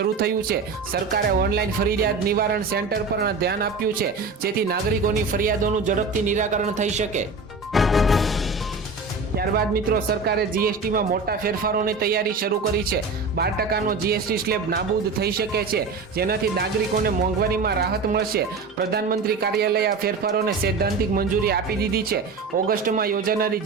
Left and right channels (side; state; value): left; quieter; 4.2 dB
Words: થયું છે. સરકારે ઓનલાઈન ફરિયાદ નિવારણ સેન્ટર પર ધ્યાન આપ્યું છે, જેથી નાગરિકોની ફરિયાદોનું ઝડપથી નિરાકરણ થઈ શકે. ત્યારબાદ મિત્રો સરકારે જીએસટીમાં મોટા ફેરફારોની તૈયારી શરૂ કરી છે. 12% જીએસટી સ્લેબ નાબૂદ થઈ શકે છે, જેનાથી નાગરિકોને મોંઘવારીમાં રાહત મળશે. પ્રધાનમંત્રી કાર્યાલય આ ફેરફારોને સૈદ્ધાંતિક મંજૂરી આપી દીધી છે. ઓગસ્ટમાં યોજાનારી